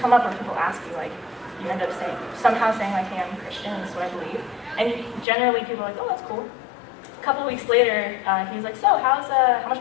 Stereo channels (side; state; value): right; drops out; at 5.2 s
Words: up where people ask you, you end up somehow saying, hey, I'm a Christian, this is what I believe. And generally people are like, oh, that's cool. A couple weeks later, he was like, so how